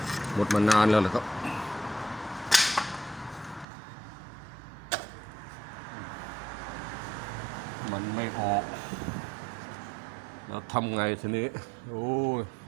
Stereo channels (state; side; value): drops out; left; at 3.7 s